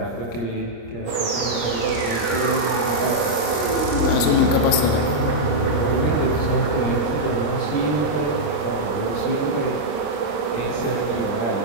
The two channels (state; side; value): late; right; 26 ms